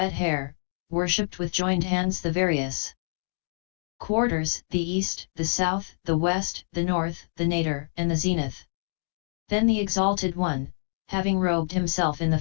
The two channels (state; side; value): silent; right; digital silence